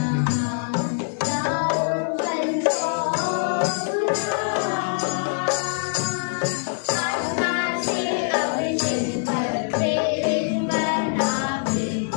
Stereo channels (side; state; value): right; silent; 59 dB below the other